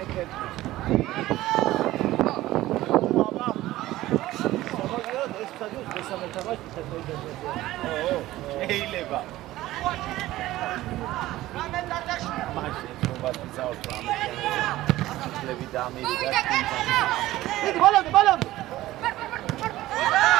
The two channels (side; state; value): left; quieter; 16.2 dB